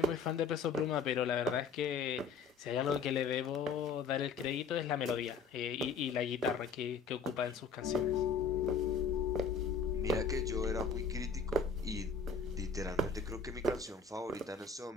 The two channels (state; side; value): quieter; right; 5.2 dB